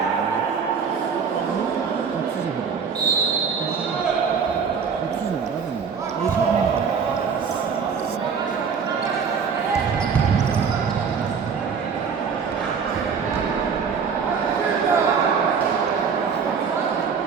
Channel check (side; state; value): left; quieter; 6.2 dB